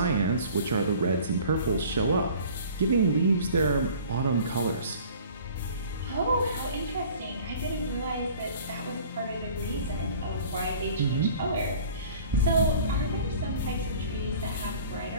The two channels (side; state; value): both; inverted; correlation -0.48